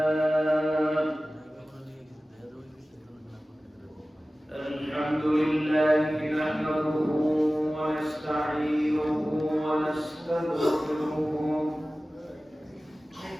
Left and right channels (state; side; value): normal; both; correlation 0.97